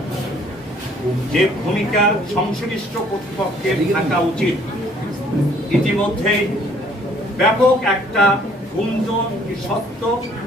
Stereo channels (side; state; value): both; normal; correlation 0.60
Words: যে ভূমিকা সংশ্লিষ্ট কর্তৃপক্ষের থাকা উচিত, ইতিমধ্যেই ব্যাপক একটা গুঞ্জন সত্য